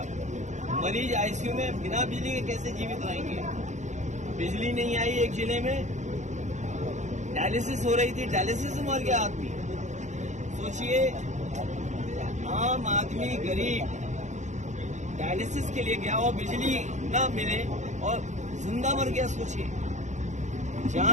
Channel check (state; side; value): late; left; 0.34 ms